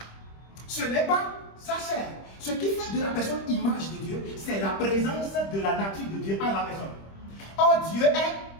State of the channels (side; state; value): right; late; 25 ms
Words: ce n'est pas sa chair. Ce qui fait de la personne image de Dieu, c'est la présence de la nature de Dieu en la personne. Or, Dieu